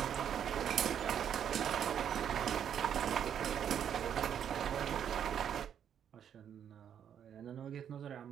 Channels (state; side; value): quieter; left; 8.9 dB